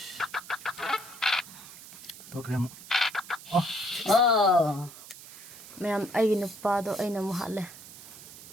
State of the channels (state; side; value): noise; right; hiss, 16 dB below the sound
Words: Program. Oh. mày am ay napa do ay namu hạ lệ